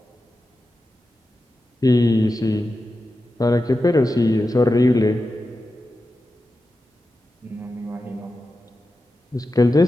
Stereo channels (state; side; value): normal; both; correlation 0.92